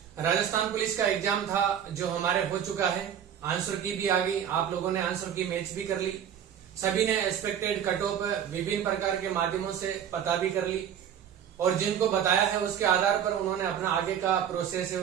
राजस्थान पुलिस का एग्जाम था जो हमारे हो चुका है। आंसर की भी आ गई, आप लोगों ने आंसर की मैच भी कर ली। सभी ने एक्सपेक्टेड कट ऑफ विभिन्न प्रकार के माध्यमों से पता भी कर ली और जिनको बताया है उसके आधार पर उन्होंने अपना आगे का प्रोसेस है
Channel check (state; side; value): quieter; left; 9.1 dB